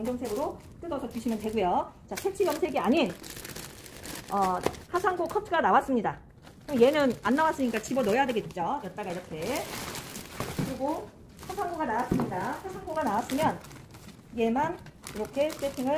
뜯어서 주시면 되고요. 자, 색칠 염색이 아닌 화산고 커트가 나왔습니다. 얘는 안 나왔으니까 집어 넣어야 되겠죠. 여기다가 이렇게. 그리고 화산고가 나왔습니다. 화산고가 나왔으면 얘만 이렇게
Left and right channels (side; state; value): both; identical; correlation 1.00